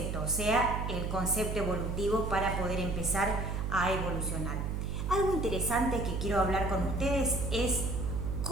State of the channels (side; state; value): right; noise; hum, 2 dB below the sound